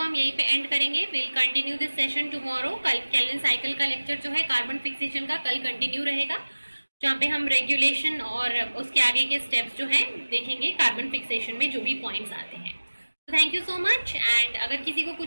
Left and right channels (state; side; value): inverted; both; correlation -1.00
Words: हम यहीं पे एंड करेंगे. Will continue this session tomorrow. कल केल्विन साइकिल का लेक्चर जो है कार्बन फिक्सेशन का कल कंटिन्यू रहेगा, जहाँ पे हम रेगुलेशन और उसके आगे के स्टेप्स जो हैं देखेंगे कार्बन फिक्सेशन में जो भी पॉइंट्स आते हैं. तो thank you so much. And अगर किसी को